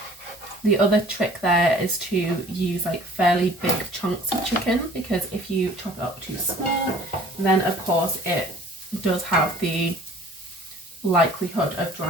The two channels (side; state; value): both; normal; correlation 0.50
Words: The other trick there is to use like fairly big chunks of chicken, because if you chop it up too small, then of course it does have the likelihood of